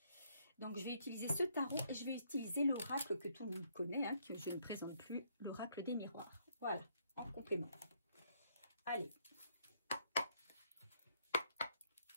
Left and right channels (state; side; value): inverted; both; correlation -0.70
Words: Donc, je vais utiliser ce tarot et je vais utiliser l'oracle que tout le monde connaît, hein, que je ne présente plus, l'oracle des miroirs. Voilà, en complément. Allez.